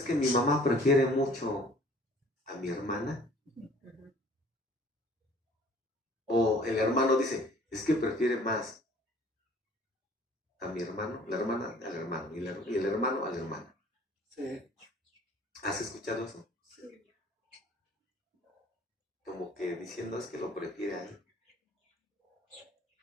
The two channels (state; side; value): normal; both; correlation 0.53